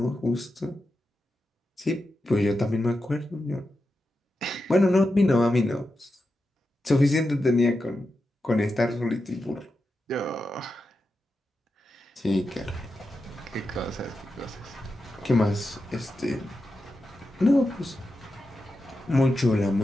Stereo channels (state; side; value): normal; both; correlation 0.89